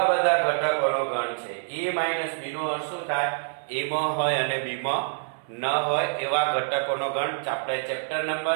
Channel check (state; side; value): silent; left; 61 dB below the other